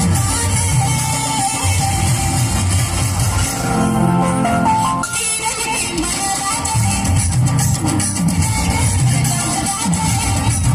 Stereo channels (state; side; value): identical; both; correlation 1.00